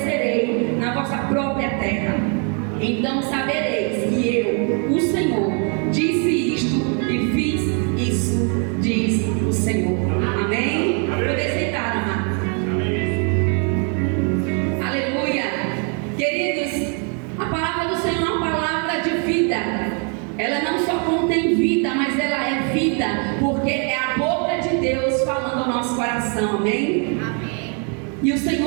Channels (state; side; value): quieter; left; 39.2 dB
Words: na vossa própria terra. Então sabereis que eu, o Senhor, disse isto e fiz isso, diz o Senhor. Amém? Poder sentar, amado. Aleluia. Queridos, a palavra do Senhor é uma palavra de vida. Ela não só contém vida, mas ela é vida, porque é a boca de Deus falando ao nosso coração. Amém? Amém. E o